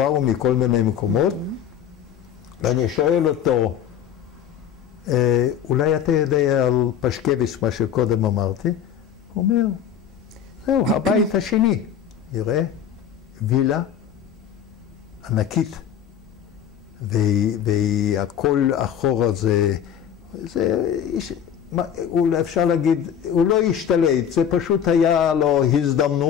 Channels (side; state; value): right; quieter; 8.9 dB